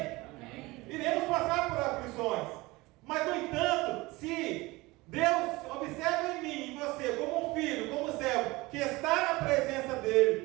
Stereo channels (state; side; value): quieter; left; 21.7 dB